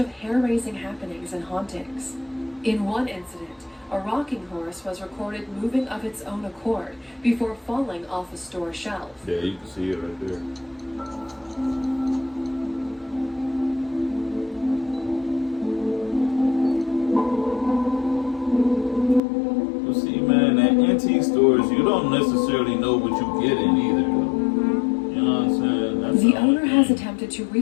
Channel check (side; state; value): right; drops out; at 19.2 s